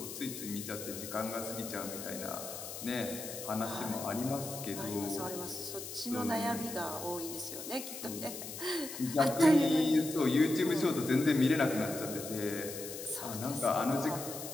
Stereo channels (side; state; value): left; noise; hiss, 9 dB below the sound